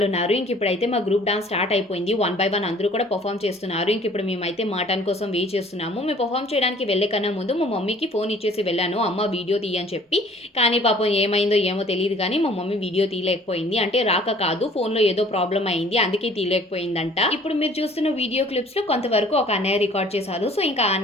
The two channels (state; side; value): normal; both; correlation 0.53